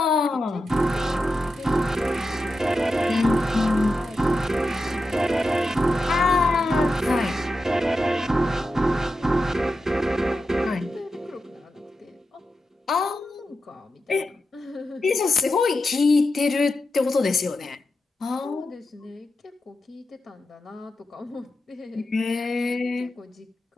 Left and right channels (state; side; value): normal; both; correlation 0.89